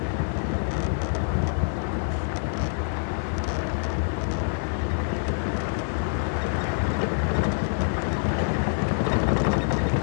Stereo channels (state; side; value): silent; right; 61 dB below the other